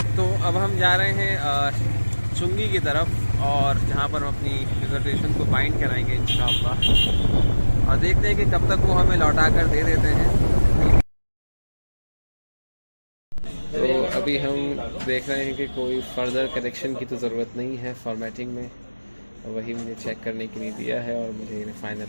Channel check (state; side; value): inverted; both; correlation -1.00